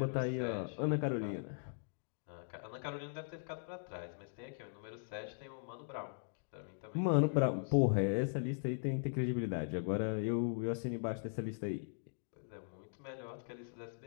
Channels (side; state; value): right; silent; digital silence